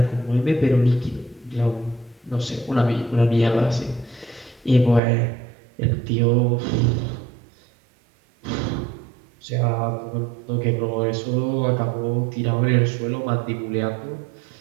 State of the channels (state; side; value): drops out; left; at 5.0 s